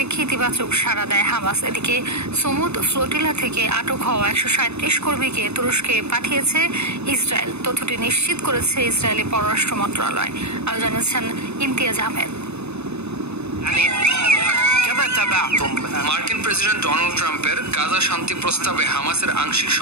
ইতিবাচক সাড়া দেয় হামাস। এদিকে সমুদ ফ্লোটিলা থেকে আটক হওয়া ১৩৭ কর্মীকে তুরস্কে পাঠিয়েছে ইসরায়েল। তথ্যটি নিশ্চিত করেছে ইসরায়েলি পররাষ্ট্র মন্ত্রণালয়। আরও জানিয়েছেন ইমতিয়াজ আহমেদ। মার্কিন প্রেসিডেন্ট ডোনাল্ড ট্রাম্পের গাজা শান্তি প্রস্তাবে হামাসের আংশিক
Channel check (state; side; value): late; left; 0.80 ms